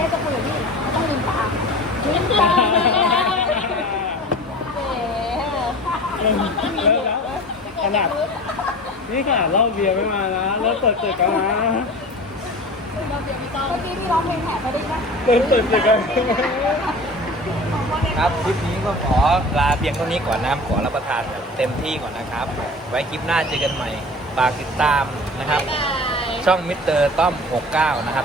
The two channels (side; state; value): both; normal; correlation 0.38